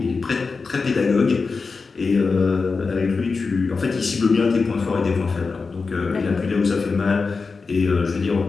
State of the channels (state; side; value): quieter; right; 4.5 dB